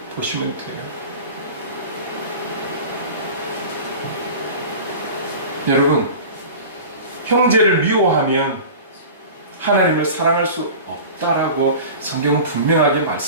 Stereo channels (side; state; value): both; inverted; correlation -0.36